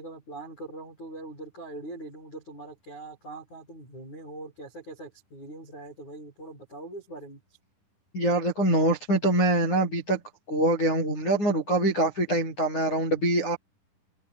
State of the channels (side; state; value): right; late; 10 ms